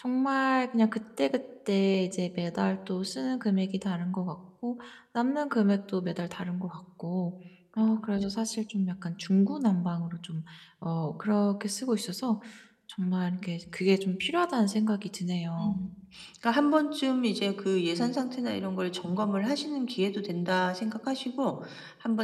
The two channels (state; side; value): identical; both; correlation 1.00